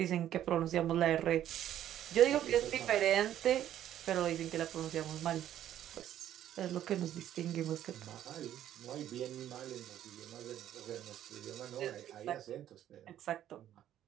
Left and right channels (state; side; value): quieter; left; 11.5 dB